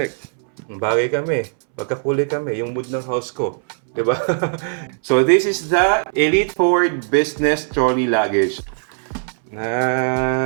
Bagay kami. Magkakulay kami. Yung mood ng house ko. Diba? So this is the Elite Forward Business Trolley Luggage.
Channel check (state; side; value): silent; left; 65 dB below the other